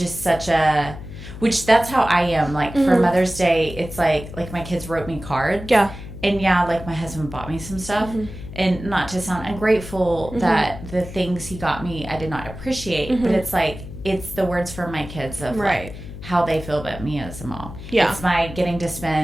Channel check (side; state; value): left; noise; hum, 12 dB below the sound